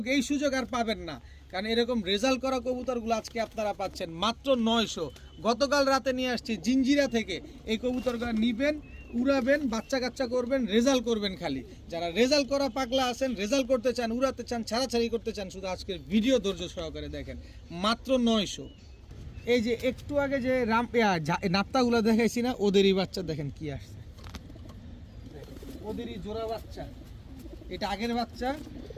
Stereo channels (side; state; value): both; identical; correlation 1.00